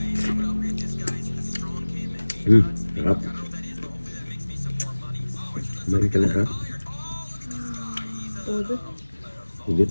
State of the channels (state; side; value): inverted; both; correlation -1.00